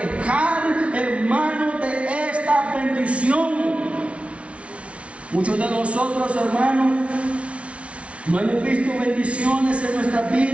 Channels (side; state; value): left; late; 0.062 ms